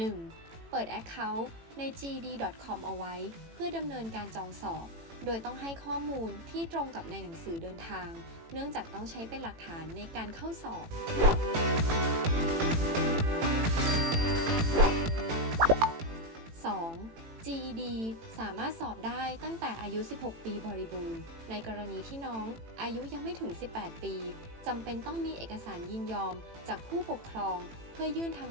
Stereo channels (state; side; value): late; left; 18 ms